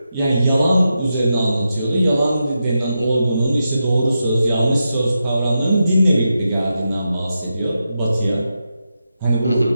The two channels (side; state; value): both; inverted; correlation -0.88